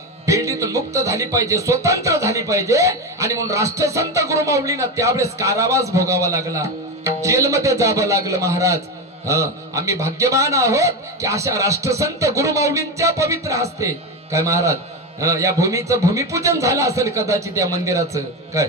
बेल्डीतून मुक्त झाली पाहिजे, स्वतंत्र झाली पाहिजे. आणि म्हणून राष्ट्रसंत गुरुमाऊलींना त्यावेळेस कारावास भोगावा लागला, जेलमध्ये जावं लागलं महाराज. आम्ही भाग्यवान आहोत की अशा राष्ट्रसंत गुरुमाऊलींच्या पवित्र हस्ते काय महाराज या भूमीचं भूमिपूजन झालं असेल कदाचित या मंदिराचं. काय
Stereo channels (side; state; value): both; normal; correlation 0.16